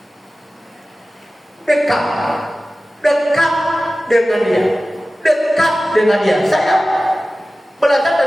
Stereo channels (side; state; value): both; normal; correlation 0.96